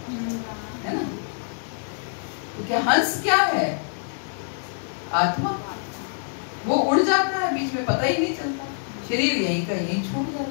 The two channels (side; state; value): right; silent; digital silence